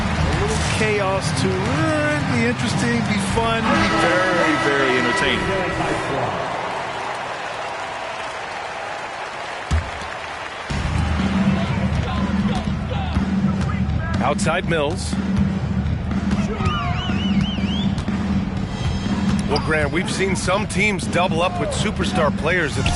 little chaos to be interesting, be fun, be very, very entertaining. Outside Mills. Well, Grant, we've seen some teams double up with superstar players at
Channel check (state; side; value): identical; both; correlation 1.00